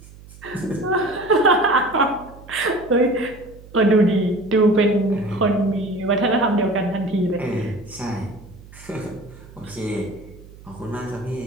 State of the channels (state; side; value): noise; right; hum, 20 dB below the sound